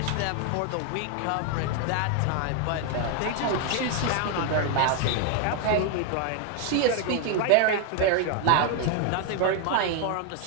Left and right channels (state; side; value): different; both; correlation 0.01